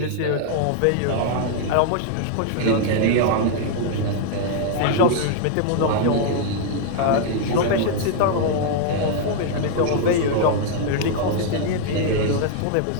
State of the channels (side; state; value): both; different; correlation 0.00